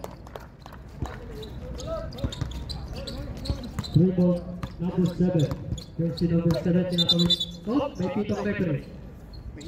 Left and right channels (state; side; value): identical; both; correlation 1.00